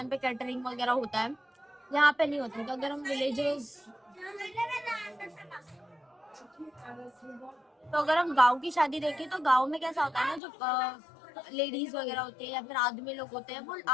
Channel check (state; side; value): drops out; right; at 10.4 s